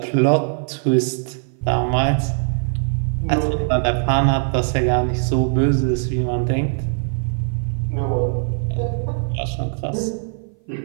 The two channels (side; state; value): left; silent; 57 dB below the other